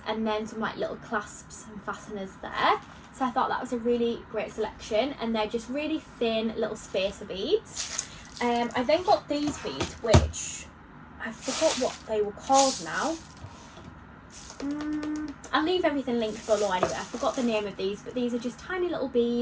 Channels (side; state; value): both; identical; correlation 1.00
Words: and then some like little clasps and fasteners there. So I thought that was a really great selection, and they're just really thin little spacer beads. I then got these beads, which I forgot what they were called now. I'll leave everything linked below anyway. I forgot the name of these, but these are just tiny little